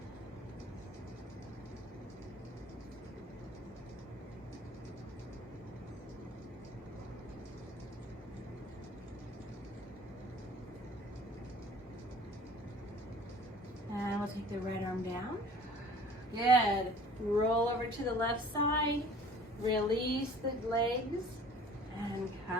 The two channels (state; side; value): normal; both; correlation 0.48